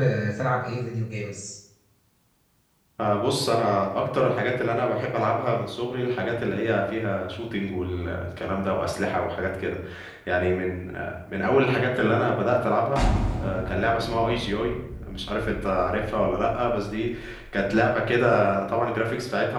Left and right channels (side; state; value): both; identical; correlation 1.00